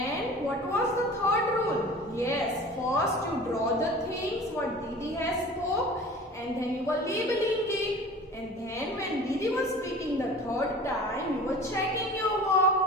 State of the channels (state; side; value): normal; both; correlation 0.41